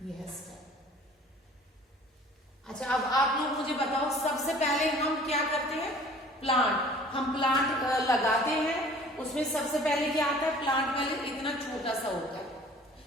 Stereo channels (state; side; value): normal; both; correlation 0.50